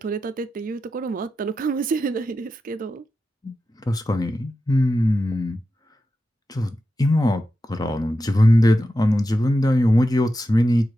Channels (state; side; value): normal; both; correlation 0.90